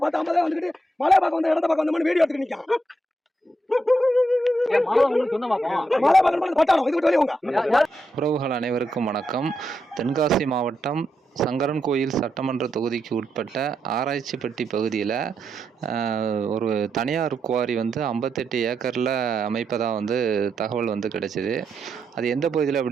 10-50 வந்துட்டு மழை பார்க்க வந்த இடத்த பார்க்க வந்த வீடியோ எடுத்து நிற்கான். உறவுகள் அனைவருக்கும் வணக்கம். தென்காசி மாவட்டம் சங்கரன்கோயில் சட்டமன்ற தொகுதிக்கு உட்பட்ட ஆராய்ச்சிப்பட்டி பகுதியில் ஒரு தனியார் குவாரி 58 ஏக்கரில் அமைப்பதாக தகவல் கிடைச்சிது. அது எந்த பகுதியில்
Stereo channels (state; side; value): normal; both; correlation 0.82